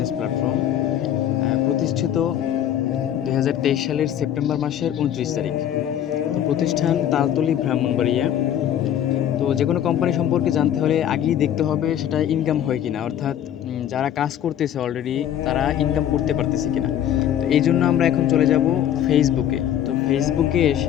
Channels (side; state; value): right; quieter; 10.5 dB